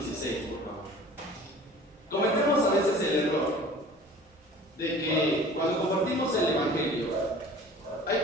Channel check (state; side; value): normal; both; correlation 0.45